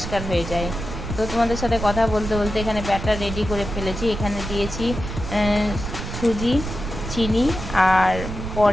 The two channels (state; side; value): noise; right; rumble, 7 dB below the sound